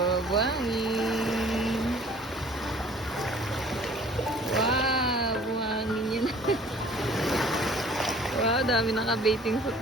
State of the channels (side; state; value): both; normal; correlation 0.52